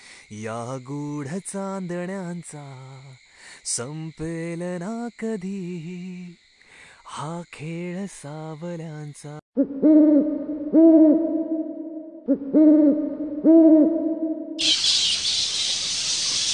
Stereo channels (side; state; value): both; identical; correlation 1.00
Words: या गूढ चांदण्यांचा, संपेल ना कधी हा खेळ सावल्यांचा.